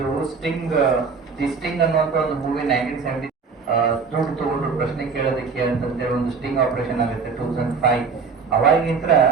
ದಿ ಸ್ಟಿಂಗ್ ಅನ್ನುವಂತ ಒಂದು ಮೂವಿ 1970 ದುಡ್ಡು ತಗೊಂಡು ಪ್ರಶ್ನೆ ಕೇಳೋದಕ್ಕೆ ಅಂತಂತೇಳಿ ಒಂದು ಸ್ಟಿಂಗ್ ಆಪರೇಷನ್ ಆಗುತ್ತೆ 2005. ಅವಾಗಿಂತ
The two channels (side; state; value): left; quieter; 5.1 dB